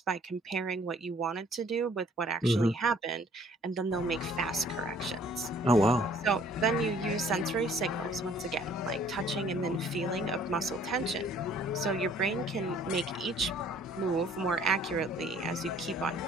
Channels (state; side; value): normal; both; correlation 0.57